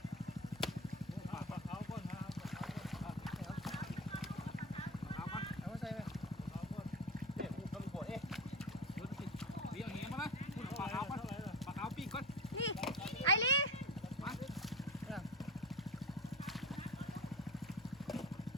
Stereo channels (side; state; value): both; normal; correlation 0.25